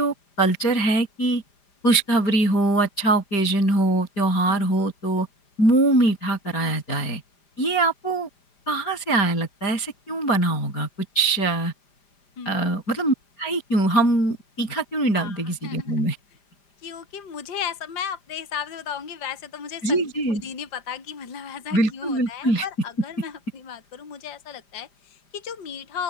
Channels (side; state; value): right; late; 5.0 ms